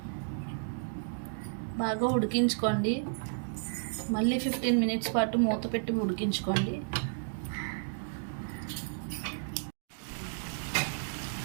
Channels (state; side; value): silent; left; digital silence